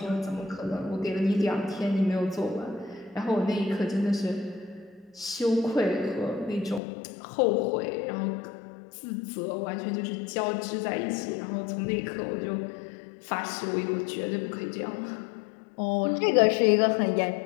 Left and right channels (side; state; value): right; drops out; at 6.8 s